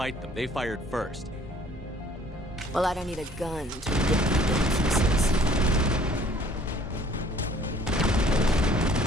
them. They fired first. Well, I don't need a gun to rip you to pieces.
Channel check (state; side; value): normal; both; correlation 0.56